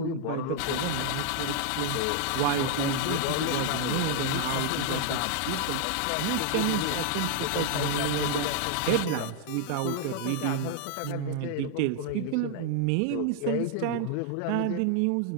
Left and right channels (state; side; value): different; both; correlation 0.00